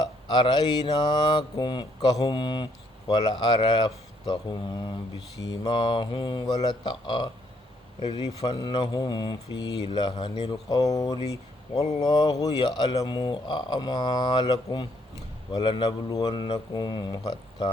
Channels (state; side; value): normal; both; correlation 0.70